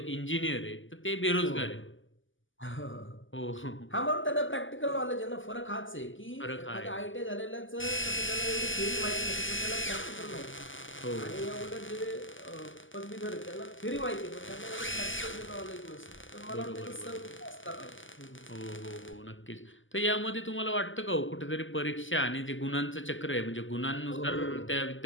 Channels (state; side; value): late; right; 0.57 ms